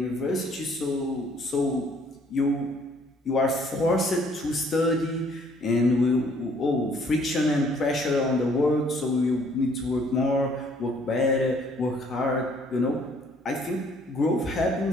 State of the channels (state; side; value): normal; both; correlation 0.62